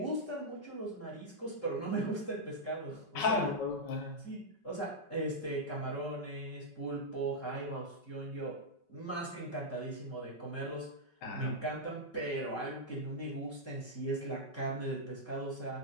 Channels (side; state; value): right; late; 5.4 ms